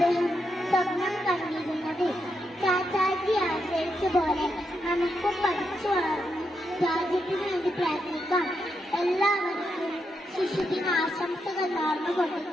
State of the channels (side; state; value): both; normal; correlation 0.82